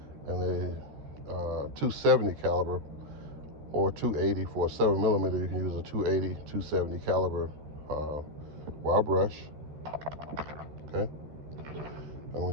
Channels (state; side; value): late; left; 13 ms